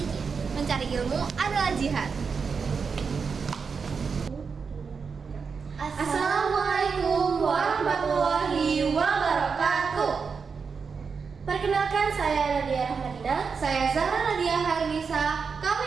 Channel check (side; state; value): left; quieter; 5.5 dB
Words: mencari ilmu adalah jihad. Assalamualaikum warahmatullahi wabarakatuh. Perkenalkan, saya Nadia Rahmadina. Saya Zahra Nadia Harnisa. Kami